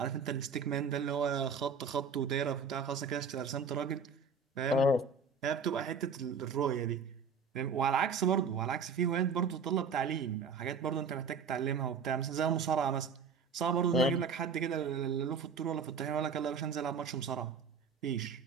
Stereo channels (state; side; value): quieter; left; 5.3 dB